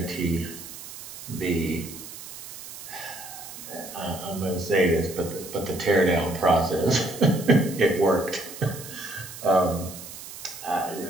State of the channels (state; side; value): noise; right; hiss, 13 dB below the sound